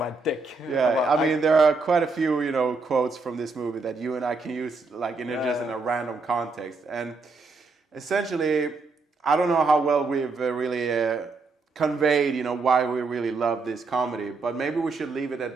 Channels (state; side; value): quieter; left; 4.0 dB